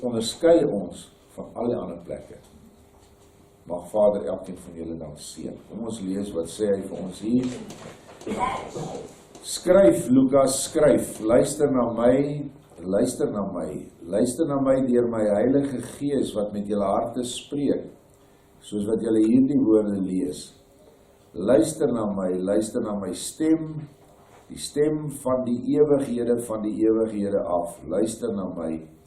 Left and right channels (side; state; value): both; identical; correlation 1.00